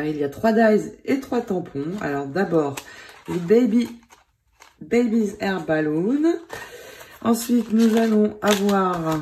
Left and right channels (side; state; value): both; identical; correlation 1.00